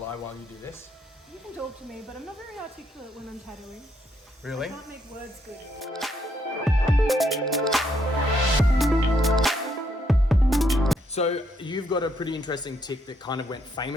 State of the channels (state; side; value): normal; both; correlation 0.74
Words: while you do this? You can talk to me, but I'm not very articulate when I'm tattooing. Really? I can't make words good. So you've got a pretty interesting tick that kind of went